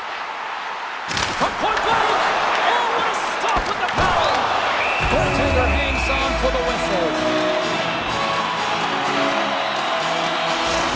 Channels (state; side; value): identical; both; correlation 1.00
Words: From point blank! Oh, what a stop with the paddle! Goaltender hangs on for the whistle.